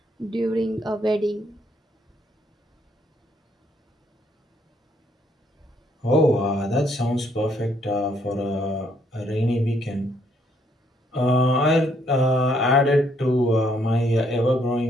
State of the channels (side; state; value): both; normal; correlation 0.70